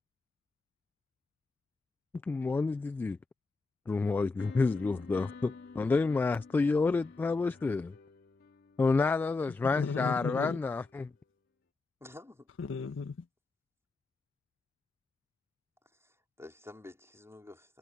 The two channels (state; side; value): quieter; right; 3.7 dB